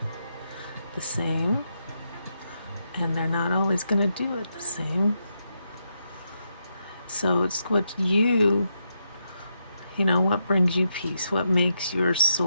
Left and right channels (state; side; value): inverted; both; correlation -0.83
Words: the same. And they're not always going to do it the same. So it's what what brings you peace, what makes your